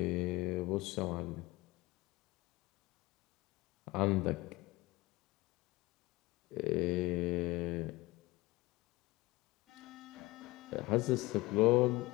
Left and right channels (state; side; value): quieter; right; 21.0 dB